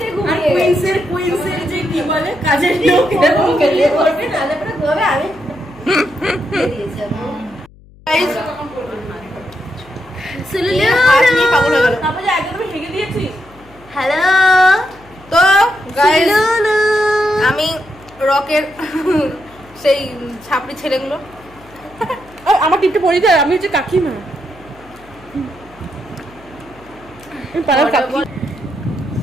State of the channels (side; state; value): left; noise; hum, 25 dB below the sound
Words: কুইন্সের যে কি বলে কাজের লোক এরকম খেলে করবে না, তারপরে ঘুমাবে। আমি দিয়েছি Guys, সুলুলু, হাত নিয়ে পাগল হয়ে গেল। হ্যালো তো গাইস, সুলুলু, আমি রকের সেই ছাপড়ি ছেলেগুলো, আমার টিপটা পড়ে যায়, আমি হচ্ছে কাকিমা, পাড়ার কাকি।